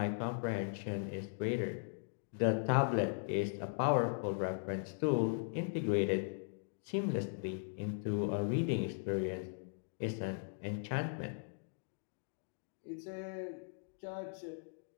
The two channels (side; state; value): right; silent; digital silence